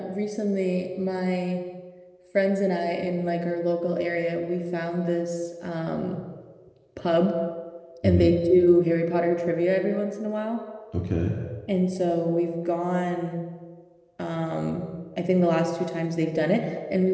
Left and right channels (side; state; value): both; identical; correlation 1.00